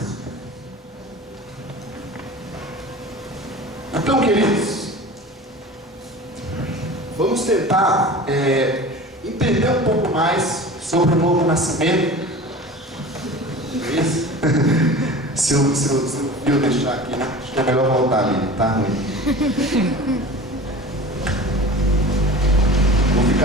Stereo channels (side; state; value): both; normal; correlation 0.37